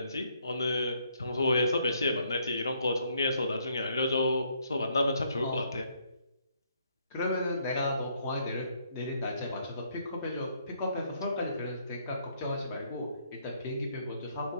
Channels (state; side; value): inverted; both; correlation -0.70